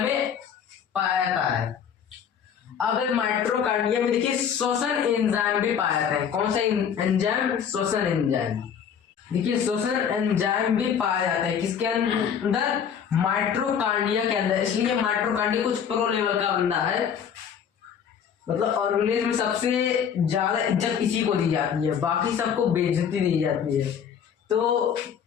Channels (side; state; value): right; quieter; 7.9 dB